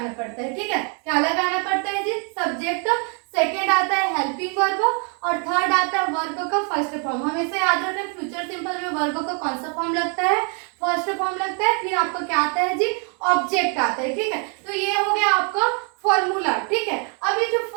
पड़ता है। ठीक है, क्या लगाना पड़ता है जी? सब्जेक्ट। सेकेंड आता है हेल्पिंग वर्ब, और थर्ड आता है वर्ब का फर्स्ट फॉर्म। हमेशा याद रखना फ्यूचर सिंपल में वर्ब का कौन सा फॉर्म लगता है? फर्स्ट फॉर्म लगता है। फिर आपका क्या आता है जी? ऑब्जेक्ट आता है। ठीक है, तो ये हो गया आपका फॉर्मूला। ठीक है, अब ये जो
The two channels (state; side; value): quieter; left; 38.6 dB